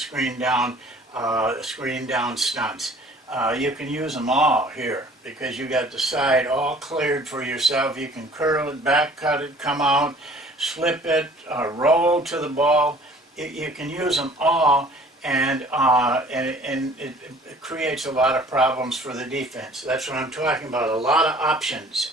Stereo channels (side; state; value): both; normal; correlation 0.51